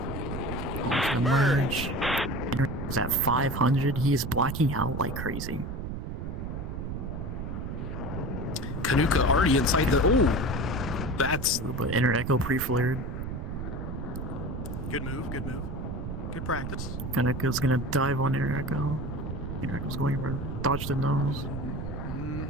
Going for the merge. Is at 500. He is blacking out like crazy. Kanuka already inside the. Oh, that's. But Inner Echo pre-flared. Good move. Good move. Good practice. Kanuka's gonna dive on Inner Echo. Inner Echo's going for dodge the nose.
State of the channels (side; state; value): right; noise; rumble, 5 dB below the sound